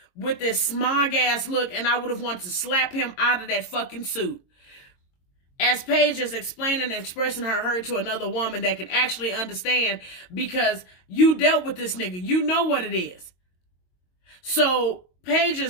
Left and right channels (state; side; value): late; right; 22 ms